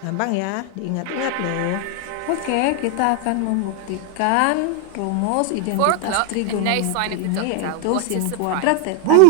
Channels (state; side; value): different; both; correlation 0.00